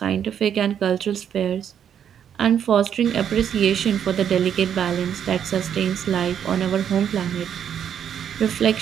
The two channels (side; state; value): left; quieter; 8.8 dB